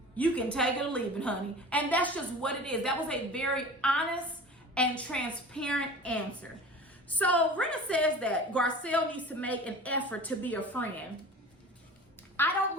you can take it or leave it, honey. And that's just what it is. That was a very honest and transparent answer. So Rinna says that Garcelle needs to make an effort to be a friend. I don't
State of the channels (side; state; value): both; normal; correlation 0.38